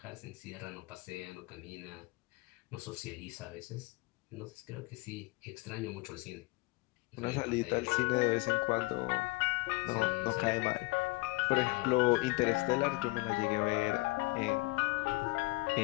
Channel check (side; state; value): right; quieter; 24.0 dB